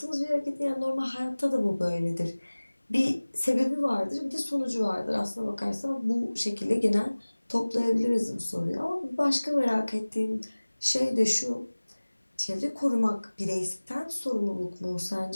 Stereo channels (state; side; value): inverted; both; correlation -1.00